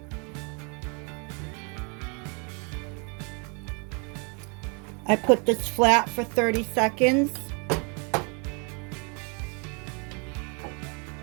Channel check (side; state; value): left; quieter; 34.5 dB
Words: I put this flat for 30 seconds.